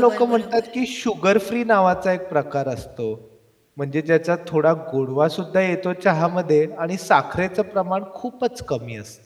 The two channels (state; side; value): identical; both; correlation 1.00